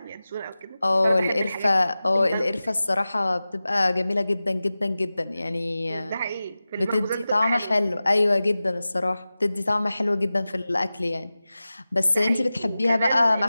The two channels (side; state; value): both; inverted; correlation -0.96